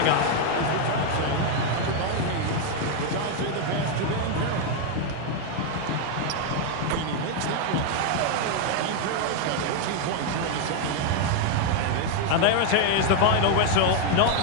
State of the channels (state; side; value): different; both; correlation 0.01